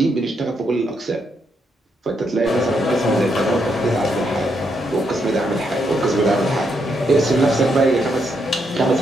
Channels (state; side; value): normal; both; correlation 0.78